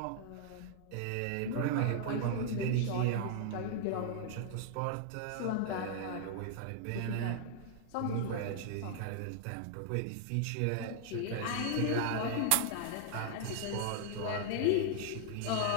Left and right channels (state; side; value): different; both; correlation 0.00